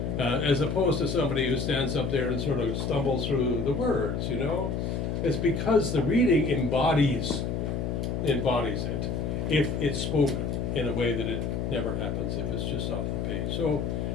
As opposed to somebody who stands up there and sort of stumbles through the words, It's because the reading embodies it, if it's spoken in a way that it never happens if it's just off the page. So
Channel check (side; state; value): left; noise; hum, 1 dB below the sound